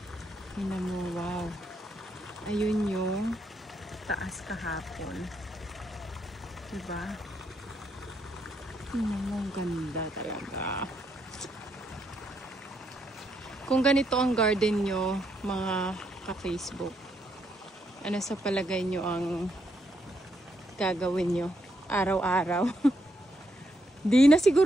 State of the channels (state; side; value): normal; both; correlation 0.77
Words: tingnan mo, wow. Ayun yung taas kahapon. Diba? Tingnan mo, ang ganda talaga. Kung ganito ang garden nyo, mga ka-Facebook, ano sa palagay nyo ang gagawin nyo araw-araw? Di na